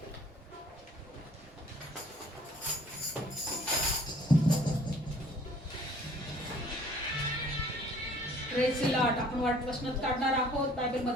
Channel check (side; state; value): both; normal; correlation 0.55